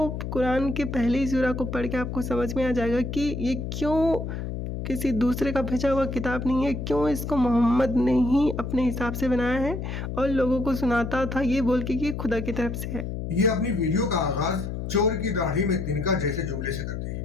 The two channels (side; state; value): left; noise; hum, 5 dB below the sound